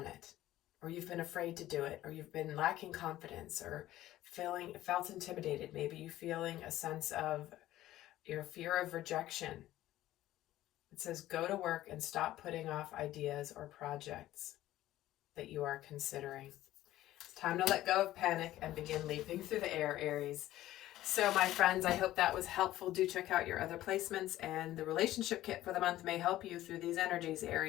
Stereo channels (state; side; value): quieter; right; 14.7 dB